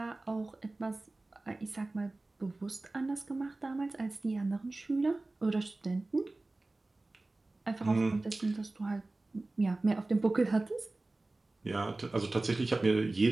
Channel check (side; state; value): left; quieter; 3.0 dB